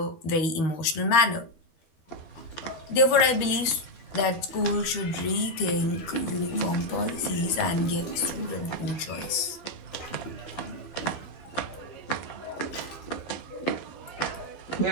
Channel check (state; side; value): late; right; 12 ms